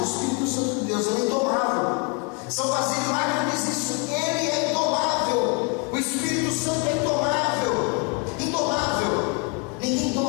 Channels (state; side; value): quieter; right; 32.7 dB